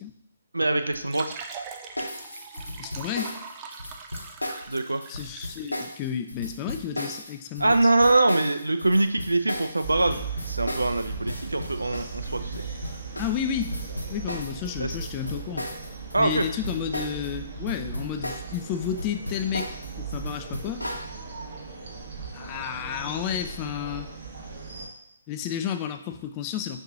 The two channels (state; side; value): inverted; both; correlation -0.74